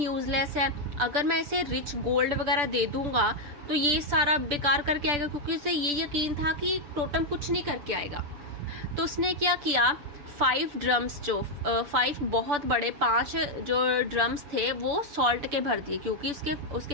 है, अगर मैं इसे रिच गोल्ड वगैरह दे दूंगा तो ये सारा बेकार करके आएगा, क्योंकि उसे ये यकीन था कि टोटम कुछ नहीं करके आएगा। तो उसने क्या किया, 5 ड्रम्स जो 5 बहुत बड़े 5 जो ड्रम्स थे वो सॉल्ट के भर दिए, क्योंकि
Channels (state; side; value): late; left; 6.9 ms